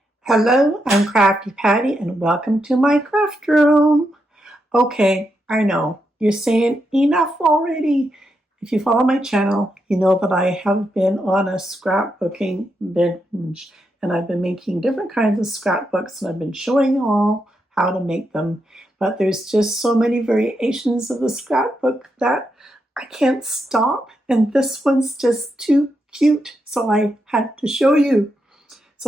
Hello, I'm Crafty Patti and welcome to my craft room. Okay, I know, you're saying enough already. If you follow my channel, you know that I have been on a scrapbooking binge and I've been making different kinds of scrapbooks and I've been showing you all how to make them. But there's just so many variations of the scrapbook that I can't stop, and this one's just too cute, so I had to show you.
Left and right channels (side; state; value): both; normal; correlation 0.83